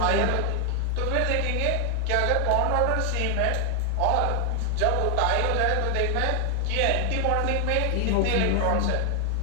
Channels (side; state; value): both; different; correlation 0.00